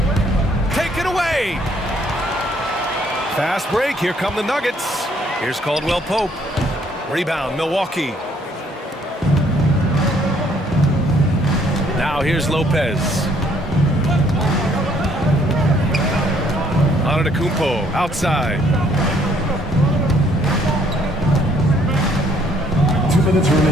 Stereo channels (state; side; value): normal; both; correlation 0.65